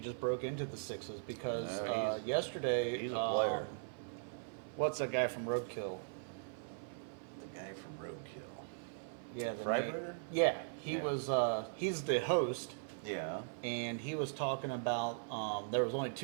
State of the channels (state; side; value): silent; left; 52 dB below the other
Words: broke into the sixes because No, yesterday. he's a player. What's that guy from Roadkill? The guy from Roadkill. Yeah, Freiberger? Yeah, he Yeah. was. He's the host, Yeah. and he was talking about there was only